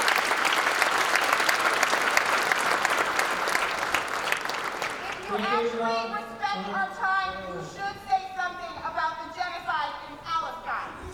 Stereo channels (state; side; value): identical; both; correlation 1.00